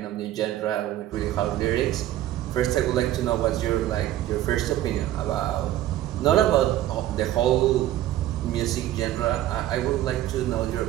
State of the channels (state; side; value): quieter; left; 13.5 dB